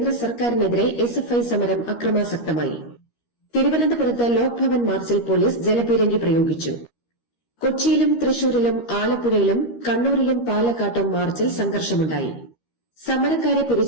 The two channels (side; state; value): right; late; 13 ms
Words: സർക്കാരിനെതിരെ SFI സമരം അക്രമാസക്തമായി. തിരുവനന്തപുരത്ത് ലോക്ഭവൻ മാർച്ചിൽ പോലീസ് ജലപീരങ്കി പ്രയോഗിച്ചു. കൊച്ചിയിലും തൃശൂരിലും ആലപ്പുഴയിലും കണ്ണൂരിലും പാലക്കാട്ടും മാർച്ചിൽ സംഘർഷമുണ്ടായി. സമരക്കാരെ